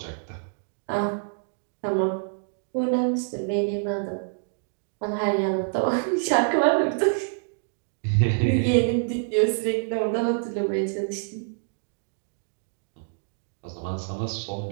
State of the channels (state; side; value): silent; left; digital silence